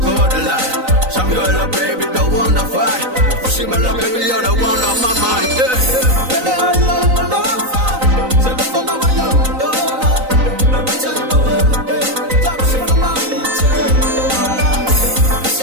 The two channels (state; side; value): late; left; 3.9 ms